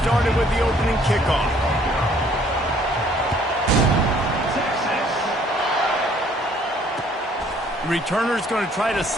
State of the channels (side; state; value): both; normal; correlation 0.60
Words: started with the opening kickoff. The returner's going to try to